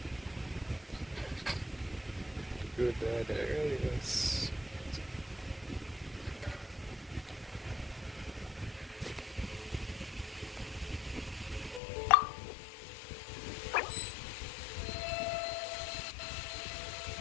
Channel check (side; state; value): right; drops out; at 11.8 s